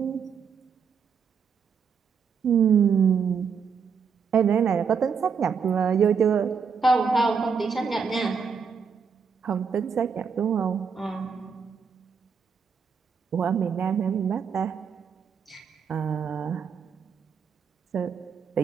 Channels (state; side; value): quieter; left; 6.2 dB